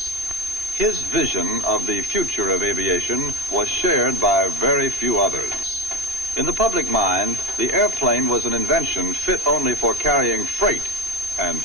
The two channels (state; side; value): late; left; 2.8 ms